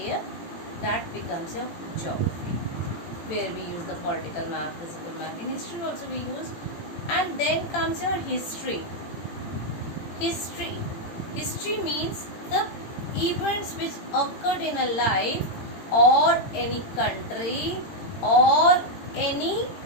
That becomes your geography, where we use the political map, physical map. In history also we use. And then comes your history. History means the events which occurred in a life or any country or any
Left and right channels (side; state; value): right; late; 18 ms